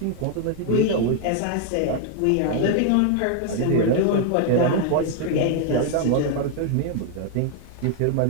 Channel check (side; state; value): both; different; correlation 0.00